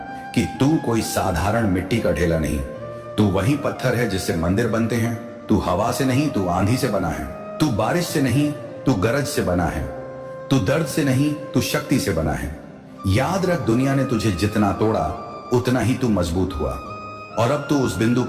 कि तू कोई साधारण मिट्टी का ढेला नहीं। तू वही पत्थर है जिससे मंदिर बनते हैं। तू हवा से नहीं, तू आंधी से बना है। तू बारिश से नहीं, तू गरज से बना है। तू दर्द से नहीं, तू शक्ति से बना है। याद रख, दुनिया ने तुझे जितना तोड़ा उतना ही तू मजबूत हुआ। और अब तू उस बिंदु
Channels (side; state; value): both; identical; correlation 1.00